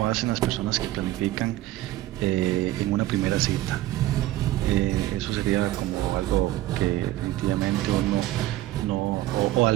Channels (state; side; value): quieter; left; 15.7 dB